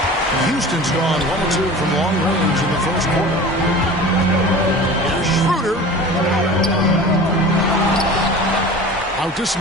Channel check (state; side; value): normal; both; correlation 0.38